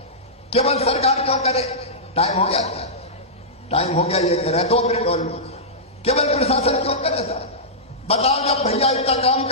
केवल सरकार क्यों करे? टाइम हो गया क्या? टाइम हो गया, ये करे 2 मिनट और। केवल प्रशासन क्यों करे सर? बताओ, जब भैया इतना काम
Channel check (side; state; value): both; normal; correlation -0.15